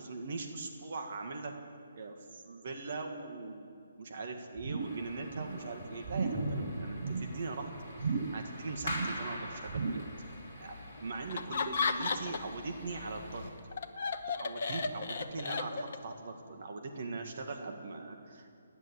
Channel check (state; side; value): inverted; both; correlation -0.74